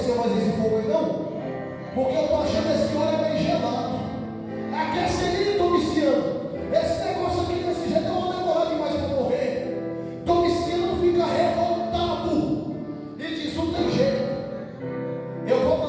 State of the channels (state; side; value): identical; both; correlation 1.00